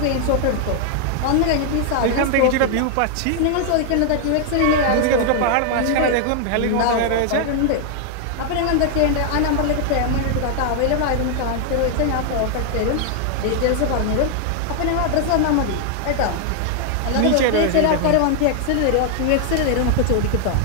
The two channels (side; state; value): both; different; correlation 0.00